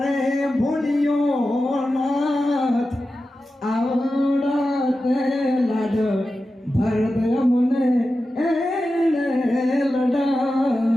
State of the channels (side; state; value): both; normal; correlation 0.92